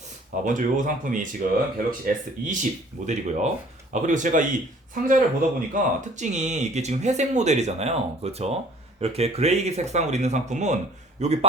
먼저 이 상품이 지금 갤럭시 S20 모델이고요. 그리고 제가 이 상자를 보다 보니까 특징이 이게 지금 회색 모델이잖아요. 그렇죠? 이렇게 그레이 색상으로 있는 상품은 여기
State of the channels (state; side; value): normal; both; correlation 0.54